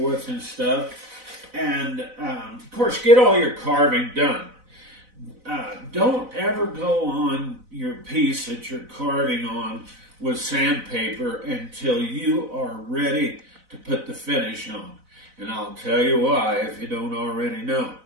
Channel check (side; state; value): left; late; 4.0 ms